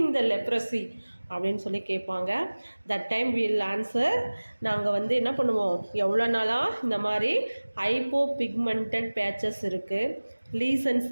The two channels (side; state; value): both; inverted; correlation -1.00